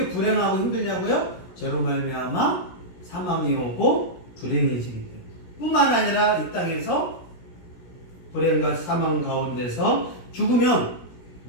불행하고 힘들냐고요? 죄로 말미암아 사망이 오고 불행해지기 때문에. 뿐만 아니라 이 땅에서 불행과 사망 가운데서 죽으면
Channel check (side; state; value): right; late; 17 ms